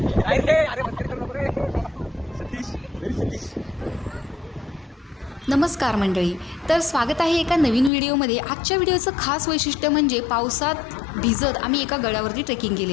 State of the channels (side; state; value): right; drops out; at 7.9 s